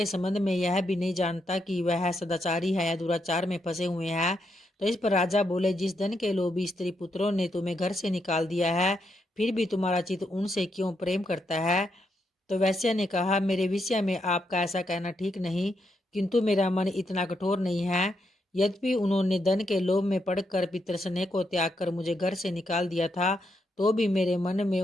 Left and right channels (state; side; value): normal; both; correlation 0.80